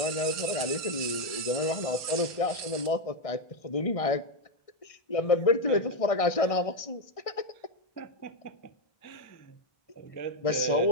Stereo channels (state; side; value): late; right; 1.6 ms